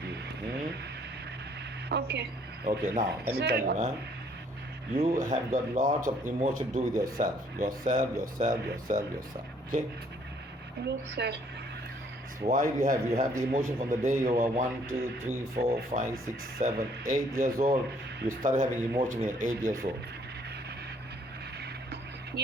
you. Okay. Okay, now let me Sir, tell you, huh? You have got lots of emotion to do with yourself. Yourself. Okay? Yes, sir. So why do you have? You have the emotion from the day you were 1, 2, 3, 4, 5, 6, 7, 8 years old. You started having emotion when you're 8 years old.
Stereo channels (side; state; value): both; normal; correlation 0.63